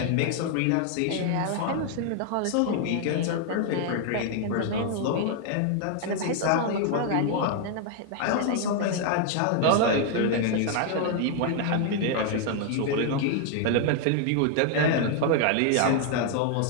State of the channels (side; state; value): both; different; correlation 0.00